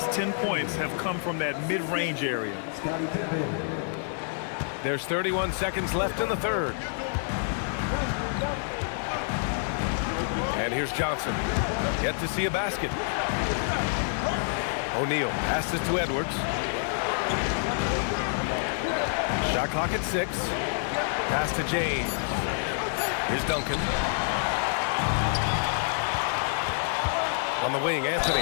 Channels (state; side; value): silent; right; 60 dB below the other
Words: 10 points have come from that mid-range area. There's 31 seconds left in the third. And here's Johnson. Yet to see a basket. O'Neal passes to Edwards. Shot clock at 6. Pass to James. Here's Duncan. On the wing,